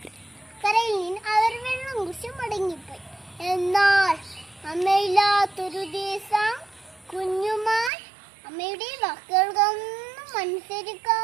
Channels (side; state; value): left; drops out; at 7.9 s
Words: കരയിൽ നിന്ന് അവർ വെള്ളം കുടിച്ച് മടങ്ങിപ്പോയി. എന്നാൽ അമ്മയില്ലാത്തൊരു ദിവസം കുഞ്ഞുമാൻ അമ്മയുടെ വാക്കുകൾക്കൊന്നും